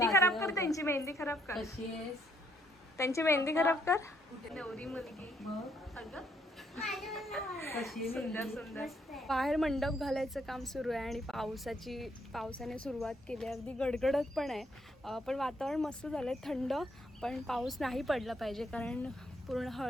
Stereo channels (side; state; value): both; normal; correlation 0.71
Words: खराब कर, त्यांची मेहंदी खराब कर, कशी आहेस? त्यांची मेहंदी खराब कर. नवरी मुलगी अगं कशी सुंदर सुंदर. बाहेर मंडप घालायचं काम सुरू आहे आणि पावसाने सुरुवात केली आहे. अगदी गडगडत पण आहे, पण वातावरण मस्त झालं आहे, थंड. पण पाऊस नाही पडला पाहिजे कारण पूर्ण